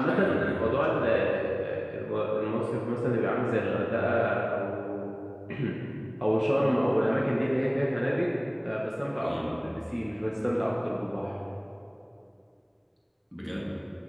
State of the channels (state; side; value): identical; both; correlation 1.00